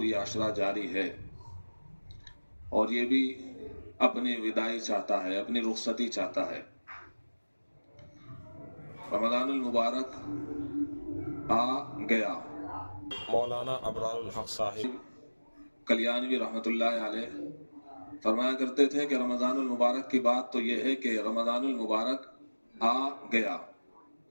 ये अशरा जारी है, और ये भी अपनी विदाई चाहता है, अपनी रुखसती चाहता है। रमज़ानुल मुबारक आ गया। मौलाना अबरारुल हक साहिब कल्याणवी रहमतुल्लाह अलैह फरमाया करते थे कि रमज़ानुल मुबारक की बात तो यह है कि रमज़ानुल मुबारक आ गया,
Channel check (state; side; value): inverted; both; correlation -1.00